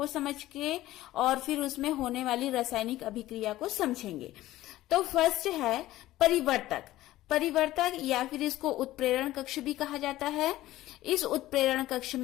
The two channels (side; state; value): right; quieter; 15.7 dB